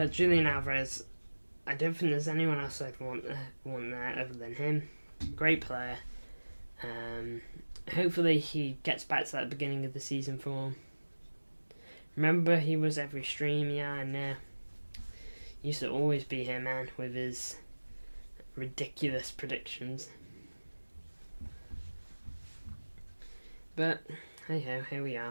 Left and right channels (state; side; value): inverted; both; correlation -1.00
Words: Julian Alvarez, I don't think there's anyone else I'd want there other than him. Great player. Hopefully he gets back to that beginning of the season form. Remember, he was every stream, yeah, I know. Used to always be here, man, with his ridiculous predictions. But, hey ho, here we